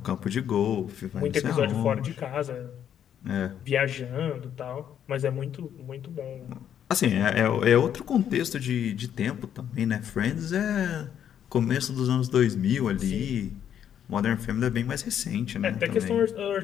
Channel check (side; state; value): right; quieter; 9.4 dB